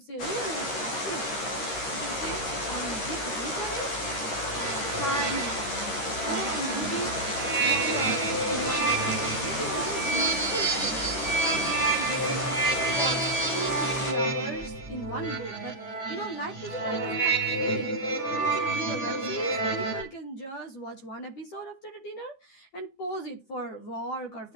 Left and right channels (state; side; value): late; right; 12 ms